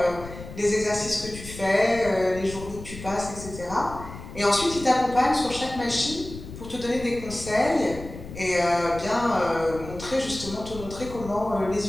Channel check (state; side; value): noise; left; rumble, 13 dB below the sound